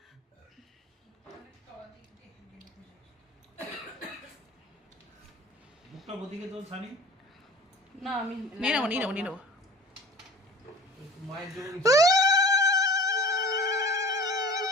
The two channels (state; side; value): normal; both; correlation 0.43